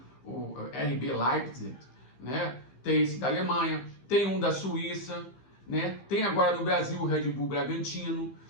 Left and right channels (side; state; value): right; late; 15 ms